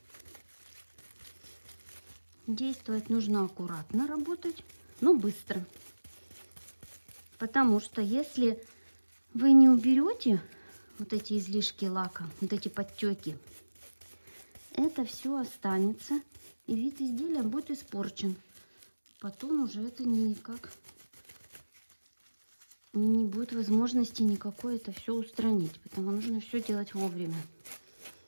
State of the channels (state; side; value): inverted; both; correlation -1.00